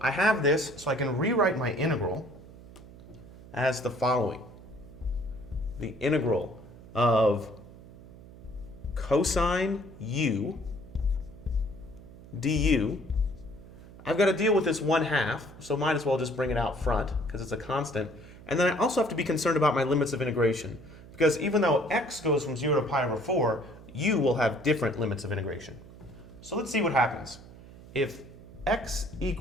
I have this, so I can rewrite my integral as the following. The integral of cosine u du. I've got to deal with this 1/2, so might as well just bring it out front because it's a constant. And then I also have to be concerned about my limits of integration because even though x goes from 0 to pi over 4, u will have different limits of integration. So let's see what happens. If x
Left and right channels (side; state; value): right; noise; hum, 18 dB below the sound